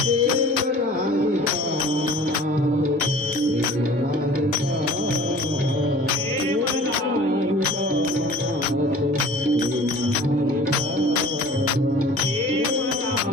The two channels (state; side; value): normal; both; correlation 0.46